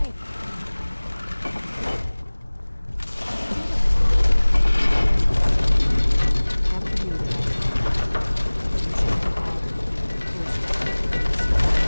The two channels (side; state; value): both; inverted; correlation -1.00